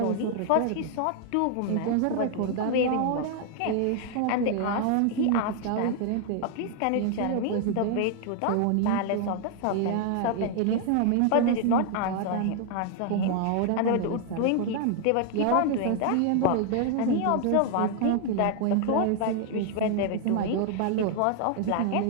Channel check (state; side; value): different; both; correlation 0.00